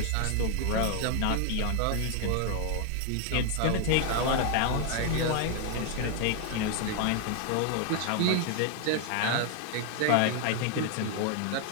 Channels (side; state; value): both; different; correlation 0.00